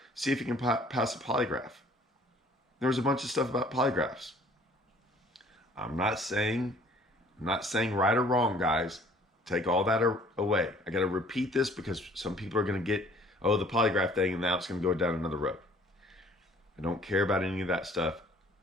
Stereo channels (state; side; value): normal; both; correlation 0.55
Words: see if you can pass a polygraph. There was a bunch of stuff about polygraphs. I'm not saying right or wrong, guys. Take all that away. I got to repeat this because some people are going to get, the polygraph thing, and now it's going to go down another road. I don't care about any of that stuff